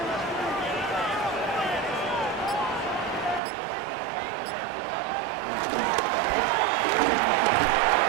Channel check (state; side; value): drops out; left; at 3.4 s